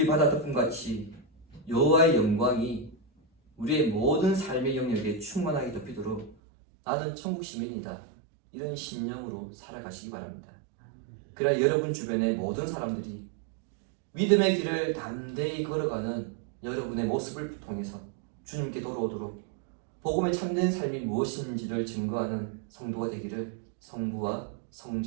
바다 덮음같이 여호와의 영광이 우리의 모든 삶의 영역에 충만하게 덮이도록 나는 천국 시민이다, 이런 신념으로 살아가시기 바랍니다. 그래야 여러분 주변의 모든 사람들이 믿음의 길을 담대히 걸어가는 여러분의 모습을 통해서 주님께 돌아오도록 복음의 참된 삶이 무엇인지를 증거하는 성도가 되기를 성부와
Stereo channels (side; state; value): left; drops out; at 6.4 s